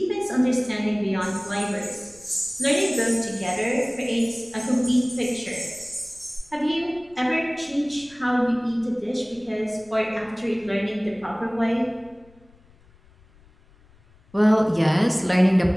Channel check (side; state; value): left; noise; rumble, 28 dB below the sound